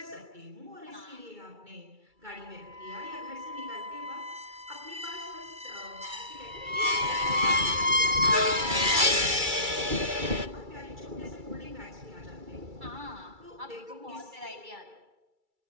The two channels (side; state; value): left; late; 2.3 ms